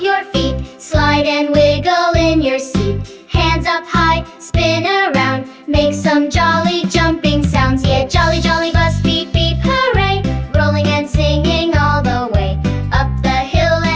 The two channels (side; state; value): both; identical; correlation 1.00